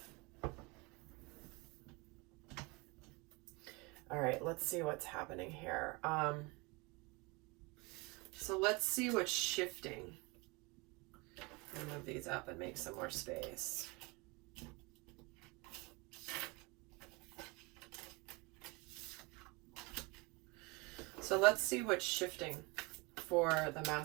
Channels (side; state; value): left; quieter; 27.0 dB